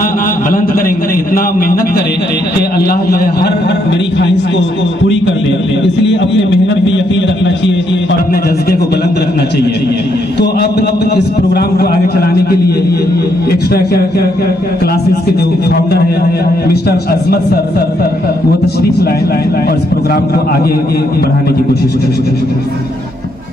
बुलंद करेंगे, इतना मेहनत करें कि अल्लाह जो है हर मेरी ख्वाहिश को पूरी कर दे। इसलिए अपने मेहनत पे यकीन रखना चाहिए और अपने जज्बे को बुलंद रखना चाहिए। तो अब इस प्रोग्राम को आगे चलाने के लिए एक्स्ट्रा क्लासेस के जो फाउंडर है मिस्टर अजमत सर वो तशरीफ लाए और इस प्रोग्राम को आगे बढ़ाने की कोशिश करें।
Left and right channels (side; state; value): right; noise; hum, 23 dB below the sound